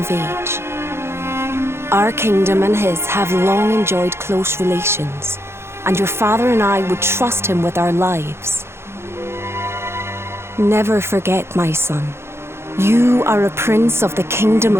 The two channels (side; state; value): left; late; 0.12 ms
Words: age. Our kingdom and his have long enjoyed close relations, and your father and I would trust him with our lives. Never forget, my son, you are a prince of the kingdom